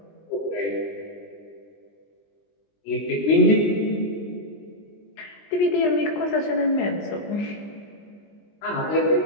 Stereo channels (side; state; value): right; late; 20 ms